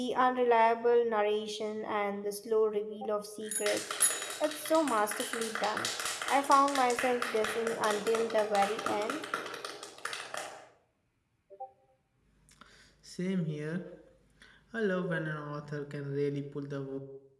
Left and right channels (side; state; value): both; identical; correlation 1.00